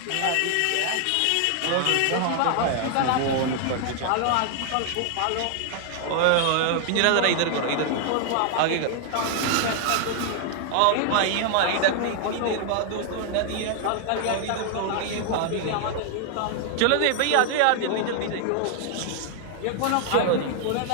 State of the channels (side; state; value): both; different; correlation 0.00